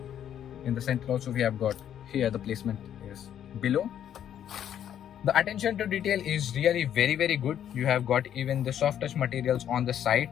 In the center also we have got here, the placement is below. The attention to detail is really very good. You have got even the soft touch materials on the side,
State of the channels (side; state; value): right; quieter; 10.0 dB